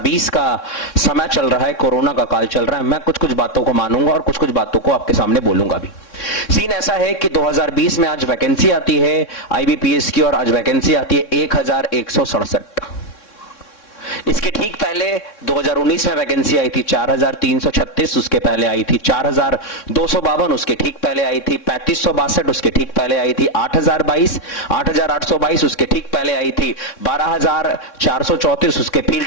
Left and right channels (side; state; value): right; late; 3.6 ms